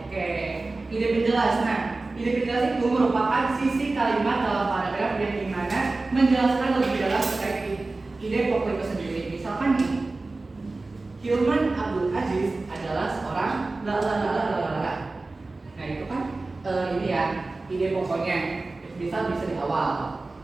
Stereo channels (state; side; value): quieter; left; 3.3 dB